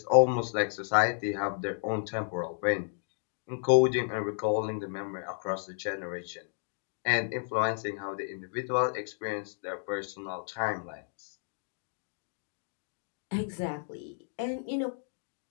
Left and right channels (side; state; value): right; silent; digital silence